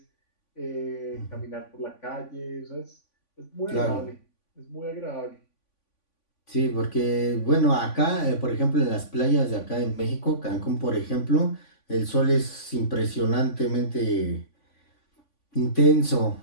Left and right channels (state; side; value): late; right; 3.5 ms